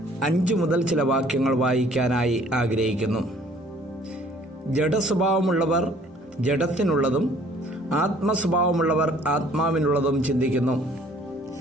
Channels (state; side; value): normal; both; correlation 0.57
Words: 5 മുതൽ ചില വാക്യങ്ങൾ വായിക്കാനായി ആഗ്രഹിക്കുന്നു. ജഡസ്വഭാവമുള്ളവർ ജഡത്തിനുള്ളതും ആത്മസ്വഭാവമുള്ളവർ ആത്മാവിനുള്ളതും ചിന്തിക്കുന്നു.